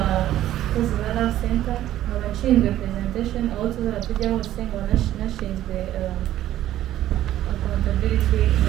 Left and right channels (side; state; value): left; quieter; 13.0 dB